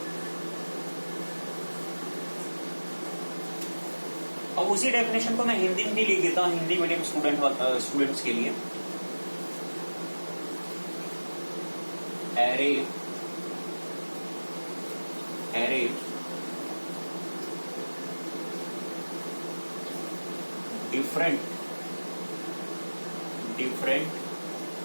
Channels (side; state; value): both; inverted; correlation -1.00